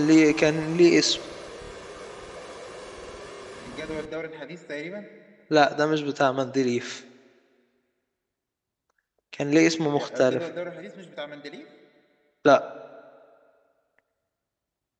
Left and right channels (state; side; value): identical; both; correlation 1.00